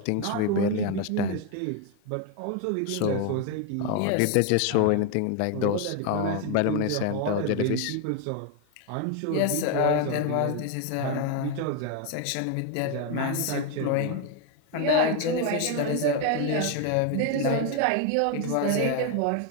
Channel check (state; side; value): different; both; correlation 0.01